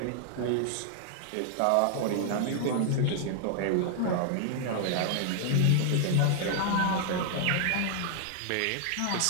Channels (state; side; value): different; both; correlation 0.00